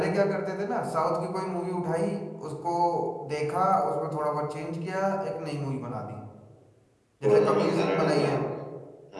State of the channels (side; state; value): both; identical; correlation 1.00